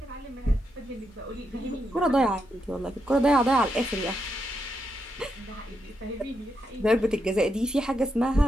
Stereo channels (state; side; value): normal; both; correlation 0.82